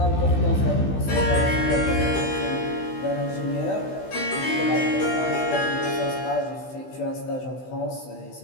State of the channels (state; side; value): late; right; 16 ms